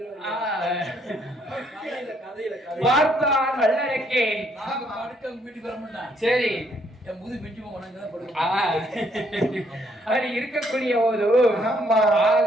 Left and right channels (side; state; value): both; normal; correlation 0.69